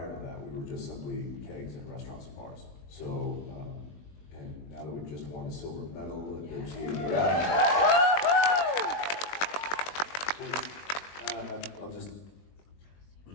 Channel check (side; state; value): right; late; 20 ms